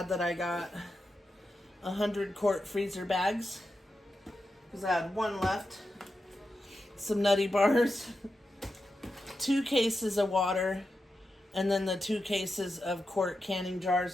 that I got 100 quart freezer bags, because I had 1 left. Some Nutty Bars. 2 cases of water, and then the 2 cases of quart canning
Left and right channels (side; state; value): both; normal; correlation 0.89